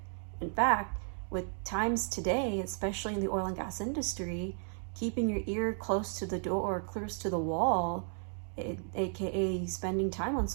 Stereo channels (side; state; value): left; silent; 55 dB below the other